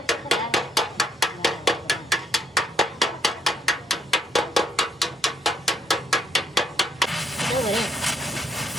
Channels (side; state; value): both; normal; correlation 0.70